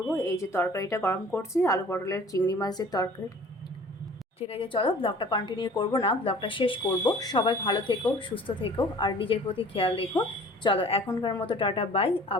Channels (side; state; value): both; normal; correlation 0.48